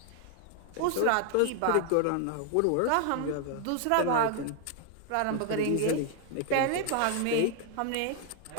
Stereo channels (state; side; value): different; both; correlation 0.00